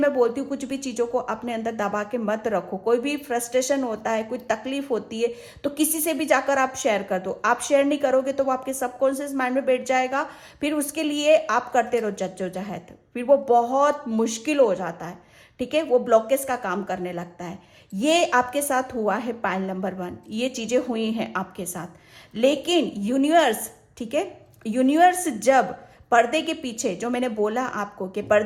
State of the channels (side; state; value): both; identical; correlation 1.00